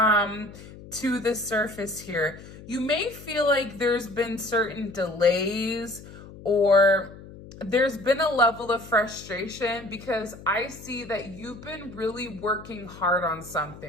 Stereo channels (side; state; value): left; noise; hum, 17 dB below the sound